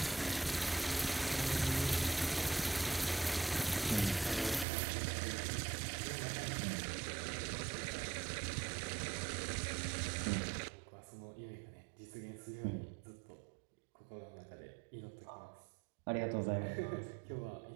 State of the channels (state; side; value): drops out; left; at 4.7 s